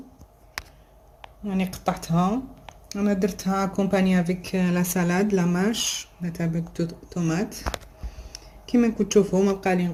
يعني قطعتها، انا درتها كومباني افيك لا سالاد لا ماش لا تاع طوماط. كيما راكم تشوفوا ما بقى لي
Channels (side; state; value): both; identical; correlation 1.00